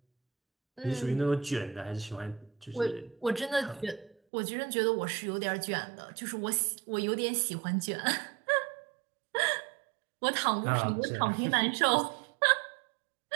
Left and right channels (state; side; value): drops out; left; at 4.2 s